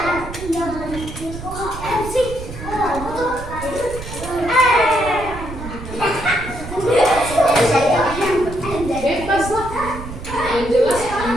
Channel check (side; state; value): right; noise; rumble, 10 dB below the sound